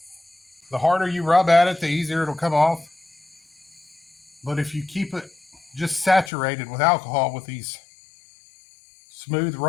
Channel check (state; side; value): drops out; right; at 6.3 s